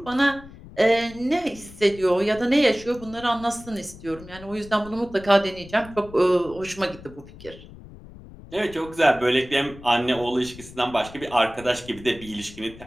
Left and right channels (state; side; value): noise; left; rumble, 18 dB below the sound